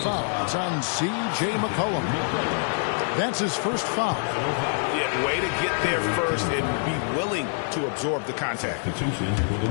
It's on C.J. McCollum. That's his first foul. Yeah, way to get there first and be willing to absorb the contact. Substitution for the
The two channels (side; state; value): right; silent; 61 dB below the other